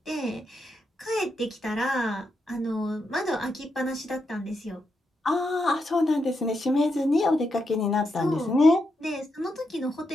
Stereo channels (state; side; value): normal; both; correlation 0.83